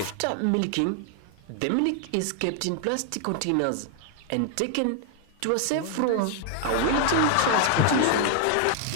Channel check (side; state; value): both; different; correlation 0.00